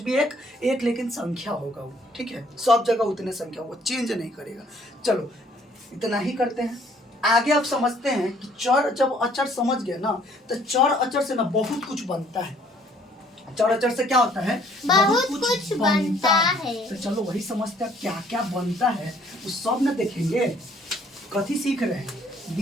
भी एक लेकिन संख्या होगा वो। ठीक है, सब जगह उतने संख्या, वो चेंज नहीं करेगा। चलो इतना ही करते हैं। आगे अब समझते हैं कि चर, जब अचर समझ गए ना, तो चर अचर से ना बहुत कुछ बनता है। चर अचर से क्या होता है? बहुत कुछ बनता है। तो चलो वही समझते हैं क्या क्या बनता है, उस सब न देखेंगे। कथी सीख रहे हैं?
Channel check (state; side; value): normal; both; correlation 0.61